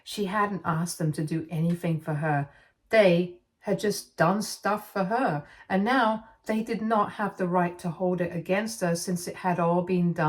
She hadn't asked them to do anything for her. They had just done stuff for her, and now they did not have the right to hold it against her since it had all been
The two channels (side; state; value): both; identical; correlation 1.00